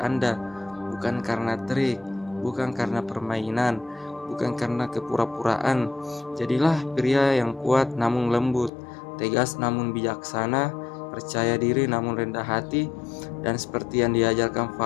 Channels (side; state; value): right; drops out; at 8.7 s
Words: bukan karena trik, bukan karena permainan, bukan karena kepura-puraan. Jadilah pria yang kuat namun lembut, tegas namun bijaksana, percaya diri namun rendah hati, dan seperti yang diajarkan